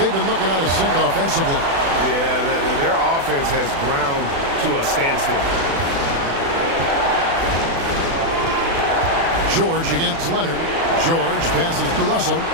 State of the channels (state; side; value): late; left; 36 ms